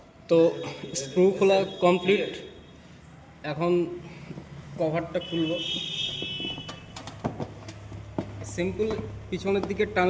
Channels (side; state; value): both; identical; correlation 1.00